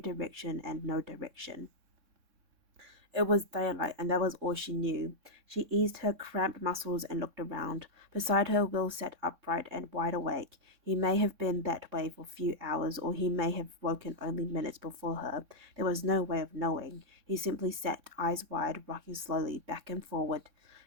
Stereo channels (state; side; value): late; left; 3.6 ms